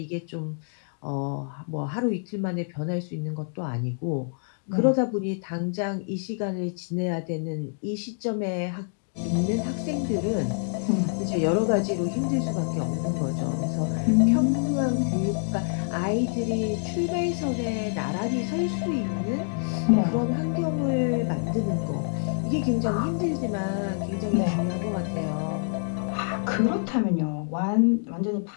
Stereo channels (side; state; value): right; silent; digital silence